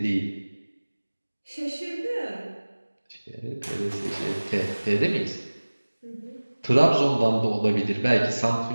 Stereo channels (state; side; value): inverted; both; correlation -1.00